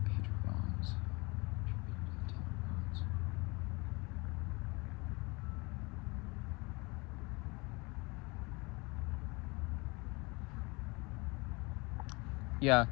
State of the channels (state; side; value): quieter; right; 26.6 dB